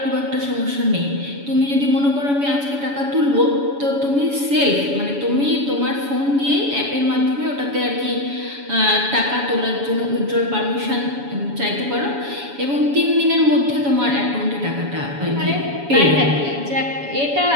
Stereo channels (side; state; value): left; late; 7.1 ms